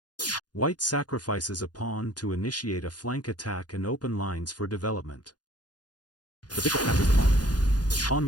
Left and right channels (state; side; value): late; right; 0.69 ms